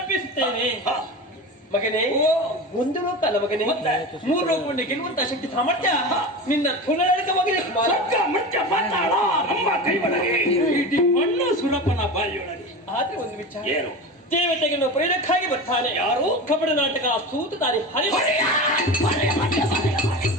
ಮಗನೇ, ಒಂದು ಲೋಕ ಅಲ್ಲ ಮಗನೇ, ಮೂರು ಲೋಕವನ್ನು ಗೆಲ್ಲುವಂತ ಶಕ್ತಿ ಸಾಮರ್ಥ್ಯ ನಿನ್ನ ತುಲಕ ಮಗನೇ. ಇಡೀ ಮಣ್ಣು ಸುರಪನ ಬಾಯಿಯೊಳಗೆ. ಆದ್ರೆ ಒಂದು ವಿಚಾರ, ಏನು? ದೇವತೆಗಳನ್ನು ಪ್ರೇರಕ್ಕಾಗಿ ಬರ್ತಾನೆ ಯಾರು? ಕಪಟ ನಾಟಕ ಸೂತ ತಾರಿ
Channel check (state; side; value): normal; both; correlation 0.28